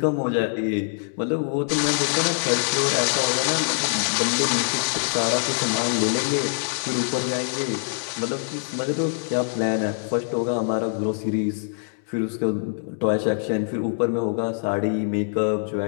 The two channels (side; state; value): right; silent; digital silence